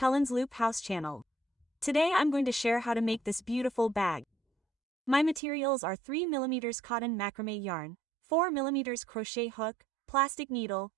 Loop House channel. Today I'm going to share how to make this beautiful bag. My materials are 3mm cotton macrame yarn, 4mm crochet hook, plastic needle,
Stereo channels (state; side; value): drops out; left; at 5.4 s